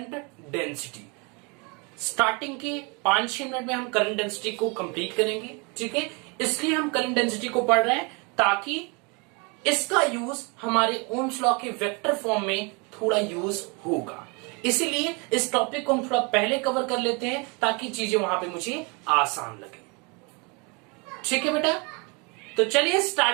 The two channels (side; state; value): left; quieter; 31.1 dB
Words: डेंसिटी। स्टार्टिंग के 5-6 मिनट में हम करंट डेंसिटी को कंप्लीट करेंगे, ठीक है। इसलिए हम करंट डेंसिटी को पढ़ रहे हैं ताकि इसका यूज हमारे ओम्स लॉ के वेक्टर फॉर्म में थोड़ा यूज होगा। इसीलिए इस टॉपिक को हम थोड़ा पहले कवर कर लेते हैं ताकि चीजें वहां पे मुझे आसान लगे, ठीक है बेटा। तो चलिए